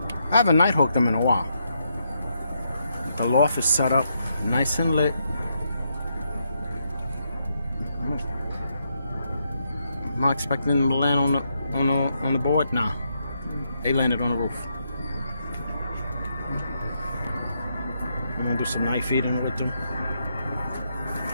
I haven't night hooked them in a while. The loft is set up nice and lit. I'm not expecting them to land on the board. Nah, they landed on the roof. I'm gonna do some night feeding with them.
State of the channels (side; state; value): both; inverted; correlation -0.79